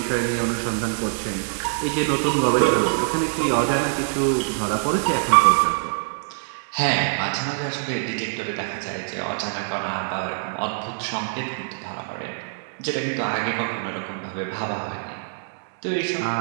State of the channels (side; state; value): left; silent; digital silence